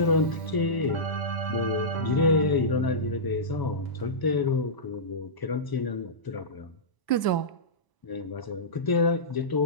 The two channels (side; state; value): right; late; 1.0 ms